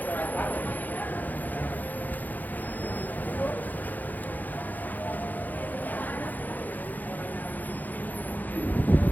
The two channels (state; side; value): late; right; 0.084 ms